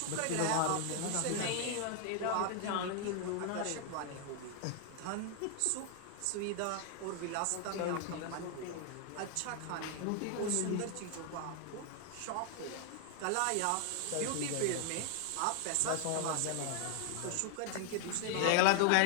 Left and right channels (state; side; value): different; both; correlation 0.00